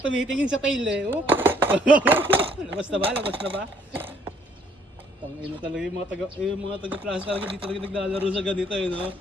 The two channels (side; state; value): both; normal; correlation 0.64